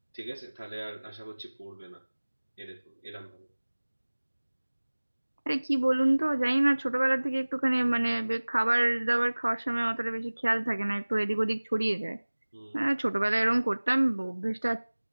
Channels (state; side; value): inverted; both; correlation -1.00